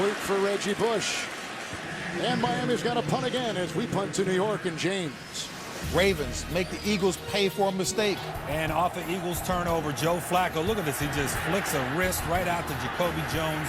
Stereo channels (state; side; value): identical; both; correlation 1.00